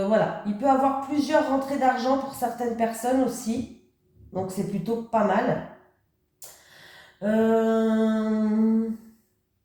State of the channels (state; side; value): identical; both; correlation 1.00